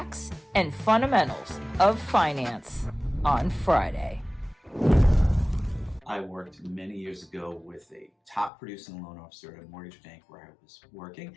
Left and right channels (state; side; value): drops out; right; at 8.5 s